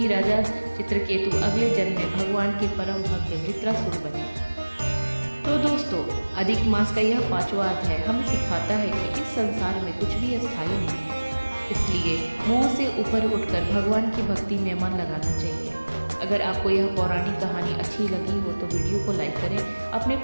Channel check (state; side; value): inverted; both; correlation -1.00